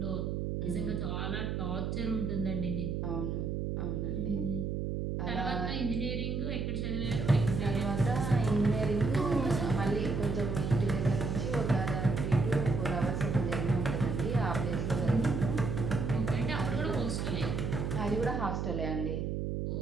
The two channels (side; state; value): right; noise; hum, 1 dB below the sound